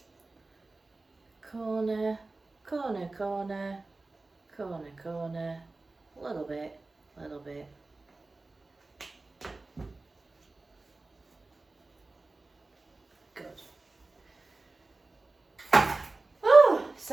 corner, corner, corner, corner, corner, little bit, little bit. Good. Oh,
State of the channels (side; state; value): left; quieter; 3.3 dB